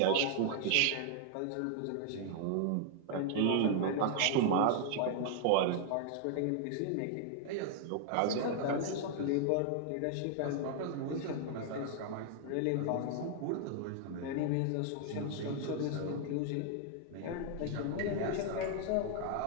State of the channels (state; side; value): different; both; correlation 0.00